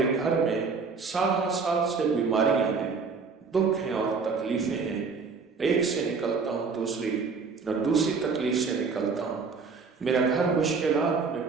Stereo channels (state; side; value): quieter; left; 4.9 dB